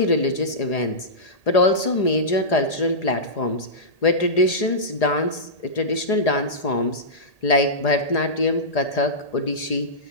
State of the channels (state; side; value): late; right; 1.8 ms